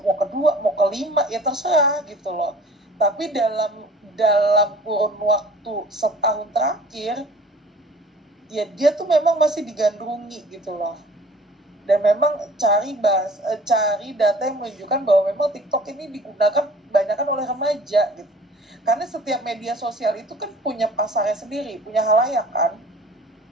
mau ke dua, mau ke lima, ya terserah gitu loh. Tapi dalam kurun waktu setahun terakhir, ya dia tuh memang masih digandrungi gitu loh. Dan memang cari data yang menunjukkan bahwa memang TikTok ini digunakan kebanyakan oleh remaja gitu. Karena setiap media sosial itu kan punya pasarnya sendiri, punya halayak kan.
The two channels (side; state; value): both; normal; correlation 0.48